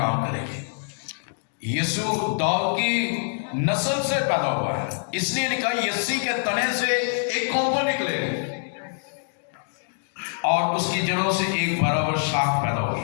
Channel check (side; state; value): right; silent; digital silence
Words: کرے گی۔ یسوع داؤد کی نسل سے پیدا ہوا ہے، اس لیے لکھا یسی کے تنے سے ایک کونپل نکلے گا اور اس کی جڑوں سے ایک برابر شاخ پیدا